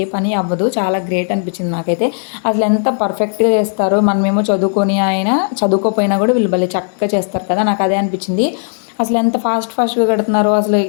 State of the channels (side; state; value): right; silent; digital silence